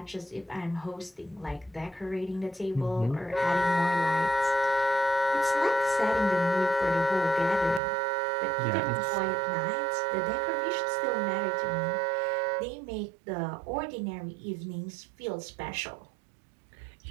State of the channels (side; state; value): left; drops out; at 7.8 s